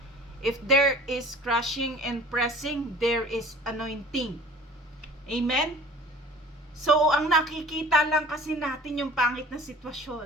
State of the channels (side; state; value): both; normal; correlation 0.46